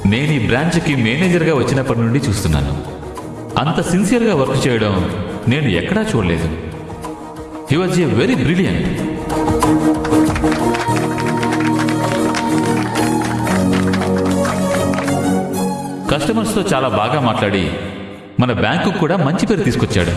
నేను ఈ బ్రాంచ్కి మేనేజర్గా వచ్చినప్పటి నుండి చూస్తున్నాను. అంత సిన్సియర్గా వర్క్ చేయడం నేను ఎక్కడా చూడలేదు. He was a very brilliant. కస్టమర్స్తో చాలా బాగా మాట్లాడి మన బ్యాంకు కూడా మంచి పేరు తీసుకొచ్చాడు.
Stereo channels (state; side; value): identical; both; correlation 1.00